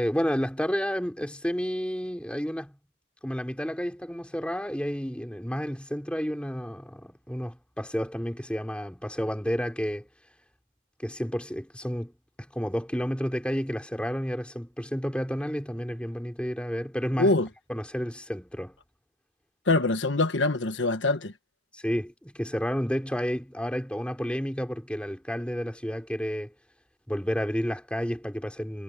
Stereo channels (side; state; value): both; normal; correlation 0.70